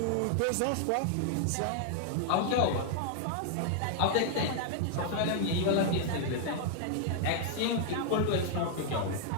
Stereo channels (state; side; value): different; both; correlation 0.00